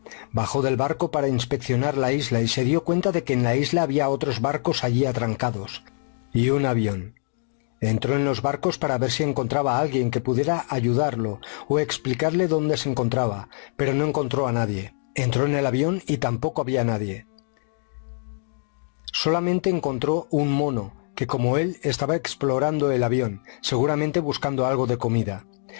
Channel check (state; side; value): silent; right; 58 dB below the other